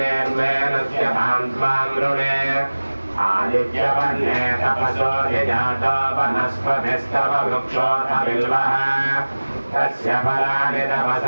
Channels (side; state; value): both; inverted; correlation -1.00